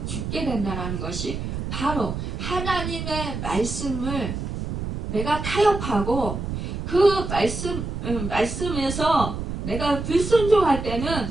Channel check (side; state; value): right; noise; rumble, 5 dB below the sound